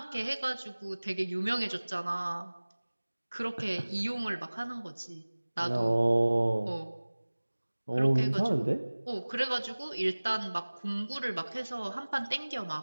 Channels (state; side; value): inverted; both; correlation -1.00